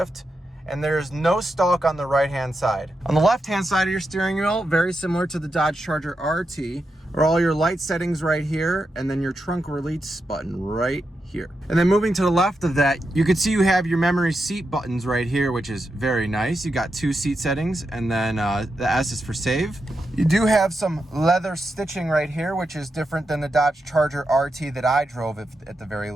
And there's no stalk on the right-hand side. On the left-hand side of your steering wheel, very similar to the Dodge Charger RT, are all your light settings right here, and then your trunk release button right here. And then moving to the left of that, you can see you have your memory seat buttons right here, which is very nice. You got two seat settings, and then the S is for save. You do have some leather stitching right here, which is different than the Dodge Charger RT that I drove at the very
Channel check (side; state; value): both; normal; correlation 0.87